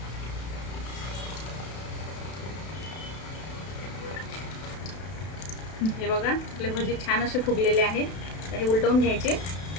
हे बघा आपले भजी छान असे फुगलेले आहेत. हे उलटवून घ्यायचे.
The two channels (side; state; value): right; late; 32 ms